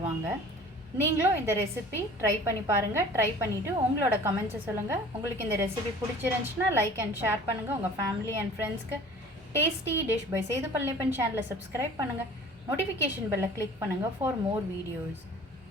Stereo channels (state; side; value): normal; both; correlation 0.46